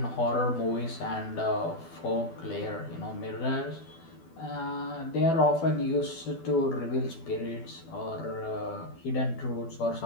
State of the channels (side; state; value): right; late; 12 ms